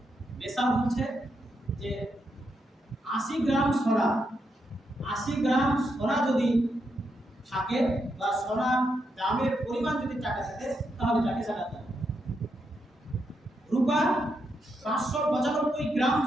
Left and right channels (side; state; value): both; normal; correlation 0.82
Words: নেশাব হচ্ছে যে 80 গ্রাম সোনা, 80 গ্রাম সোনা যদি থাকে বা সোনার দামের পরিমাণ যদি টাকা থাকে তাহলে তাকে জাকাত দেয়। রূপা 595 গ্রাম